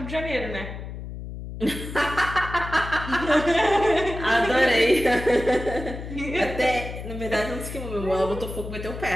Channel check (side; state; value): left; noise; hum, 9 dB below the sound